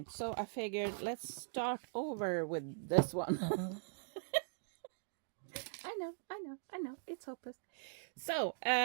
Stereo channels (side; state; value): left; silent; digital silence